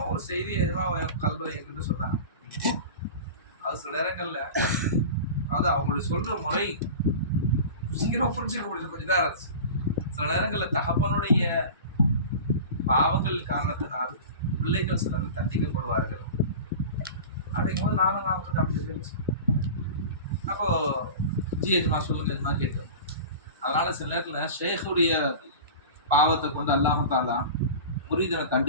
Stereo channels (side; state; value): both; inverted; correlation -0.33